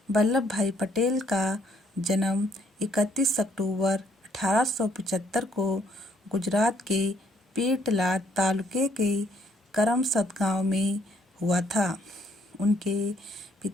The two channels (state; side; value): normal; both; correlation 0.68